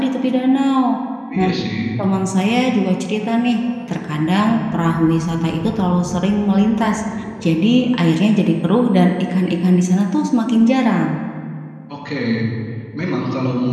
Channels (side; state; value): both; identical; correlation 1.00